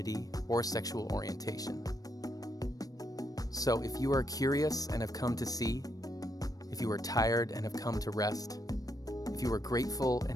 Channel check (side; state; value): right; late; 0.18 ms